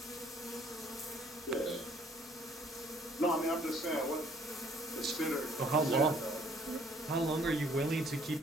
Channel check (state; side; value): normal; both; correlation 0.60